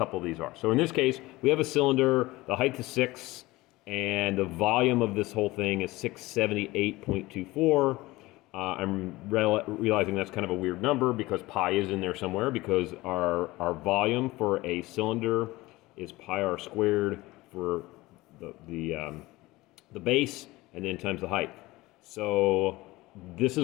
of these are. So in this case, we have a cylinder, the height is 6, and the volume of this whole thing is 678.24. I'm realizing that's kind of a weird number because pi is in there somewhere, because our volume for a cylinder is pi r squared for the base, and then times the height. So this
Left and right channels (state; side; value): quieter; right; 19.8 dB